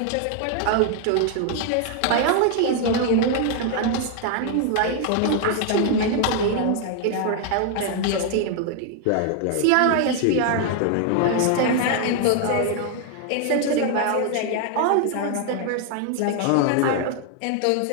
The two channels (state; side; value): different; both; correlation 0.00